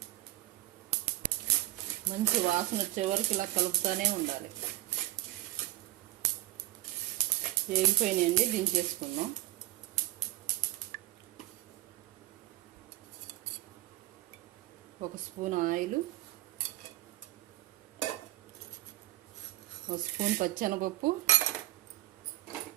మంచి వాసన వచ్చే వరకు ఇలా కలుపుతూనే ఉండాలి. వేగిపోయినాయండి, దించేసుకుందాం. ఒక స్పూన్ ఆయిల్, 1 స్పూన్ పచ్చెనపప్పు,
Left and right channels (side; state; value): left; quieter; 16.7 dB